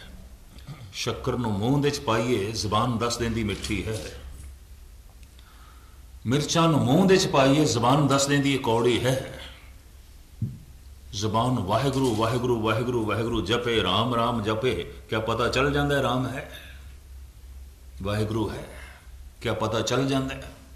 ਸ਼ੱਕਰ ਨੂੰ ਮੂੰਹ ਦੇ ਚ ਪਾਈਏ ਜ਼ਬਾਨ ਦੱਸ ਦਿੰਦੀ ਮਿੱਠੀ ਹੈ, ਮਿਰਚਾਂ ਨੂੰ ਮੂੰਹ ਦੇ ਚ ਪਾਈਏ ਜ਼ਬਾਨ ਦੱਸ ਦਿੰਦੀ ਕੌੜੀ ਹੈ। ਜ਼ਬਾਨ ਵਾਹਿਗੁਰੂ ਵਾਹਿਗੁਰੂ ਵਾਹਿਗੁਰੂ ਵਾਹਿਗੁਰੂ ਜਪੇ, ਰਾਮ ਰਾਮ ਜਪੇ, ਕਿਆ ਪਤਾ ਚੱਲ ਜਾਂਦਾ ਰਾਮ ਹੈ, ਵਾਹਿਗੁਰੂ ਹੈ, ਕਿਆ ਪਤਾ ਚੱਲ ਜਾਂਦਾ।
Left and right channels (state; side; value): identical; both; correlation 1.00